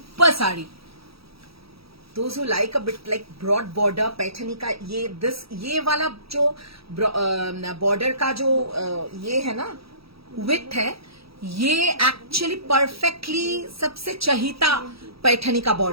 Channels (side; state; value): left; late; 0.76 ms